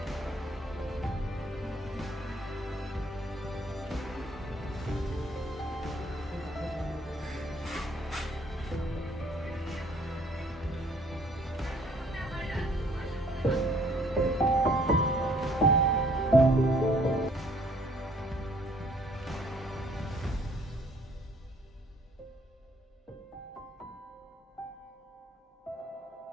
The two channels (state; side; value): normal; both; correlation 0.61